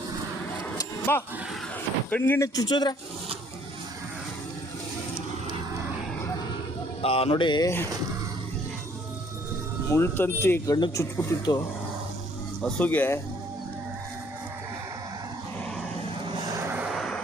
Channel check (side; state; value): both; normal; correlation 0.61